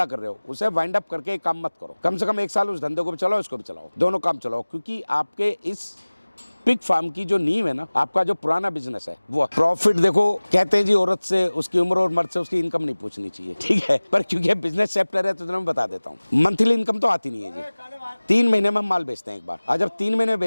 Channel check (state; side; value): inverted; both; correlation -1.00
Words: कर रहे हो, उसे वाइंड अप करके एक काम मत करो, कम से कम 1 साल उस धंधे को भी चलाओ, इसको भी चलाओ, दोनों काम चलाओ, क्योंकि आपके इस पिग फार्म की जो नींव है ना, आपका जो पुराना बिजनेस है वो प्रॉफिट। देखो कहते हैं जी औरत से उसकी उम्र और मर्द से उसकी इनकम नहीं पूछनी चाहिए, ठीक है, पर क्योंकि बिजनेस चैप्टर है तो मैं बता देता हूँ। मंथली इनकम तो आती नहीं है जी। 3 महीने में हम माल बेचते हैं एक बार, और जब 3 महीने में